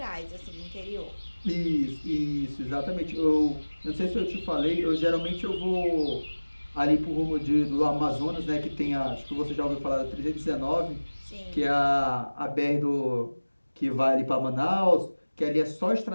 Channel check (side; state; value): both; inverted; correlation -1.00